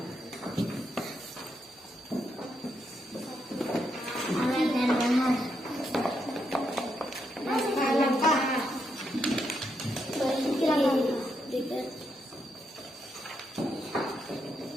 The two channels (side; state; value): both; normal; correlation 0.80